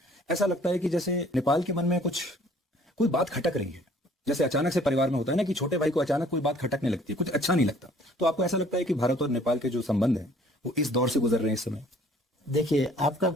ऐसा लगता है कि जैसे नेपाल के मन में कोई बात खटक रही है। जैसे अचानक से परिवार में होता है ना कि छोटे भाई को अचानक कोई बात खटकने लगती है, कुछ अच्छा नहीं लगता। तो आपको ऐसा लगता है कि भारत और नेपाल के जो संबंध हैं वो इस दौर से गुजर रहे हैं इस समय? देखिए, आपका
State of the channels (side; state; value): both; normal; correlation 0.56